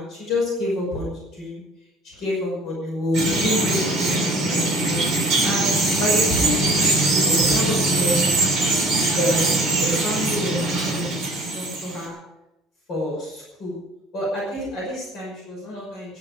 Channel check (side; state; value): both; normal; correlation 0.50